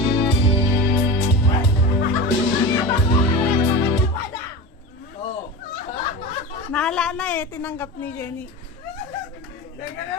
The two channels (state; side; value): normal; both; correlation 0.27